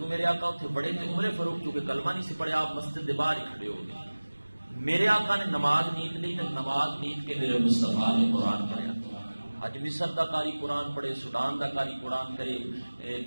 میرے آقا اتنے بڑے تھے عمر فاروق چونکہ کلمہ نہیں سی پڑھیا آپ مسجد کے باہر ہی کھڑے ہو گئے۔ میرے آقا نے نماز نیت لی تو نماز نیت کے میرے مصطفیٰ نے قرآن پڑھیا۔ اج مصر دا قاری قرآن پڑھے، سوڈان دا قاری قرآن کرے،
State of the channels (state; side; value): inverted; both; correlation -1.00